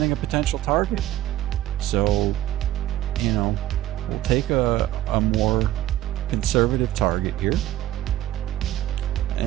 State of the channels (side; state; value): left; quieter; 14.0 dB